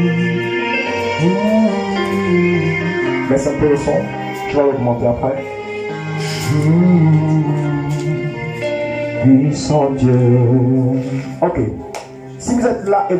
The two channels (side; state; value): both; identical; correlation 1.00